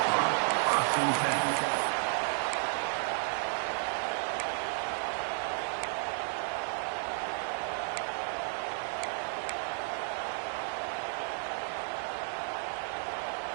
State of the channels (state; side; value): silent; left; 56 dB below the other